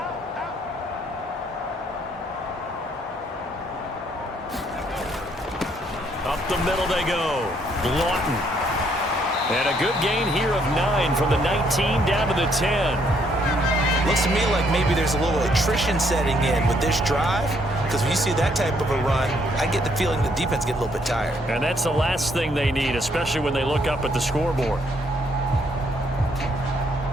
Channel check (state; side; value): normal; both; correlation 0.69